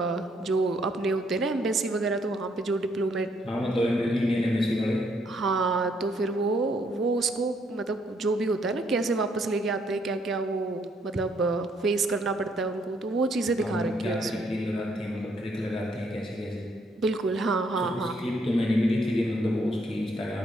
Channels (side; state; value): both; normal; correlation 0.70